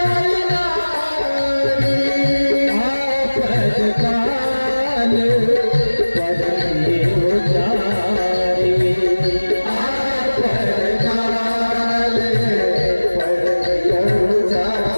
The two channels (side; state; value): both; inverted; correlation -1.00